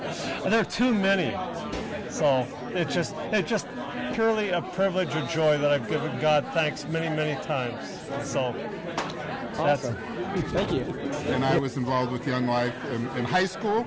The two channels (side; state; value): both; identical; correlation 1.00